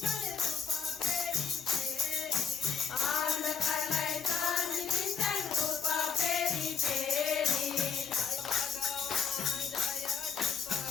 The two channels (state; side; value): quieter; right; 6.2 dB